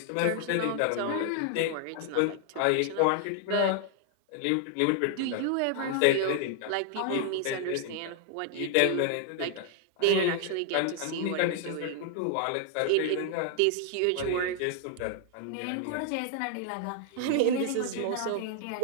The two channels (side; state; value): both; different; correlation 0.00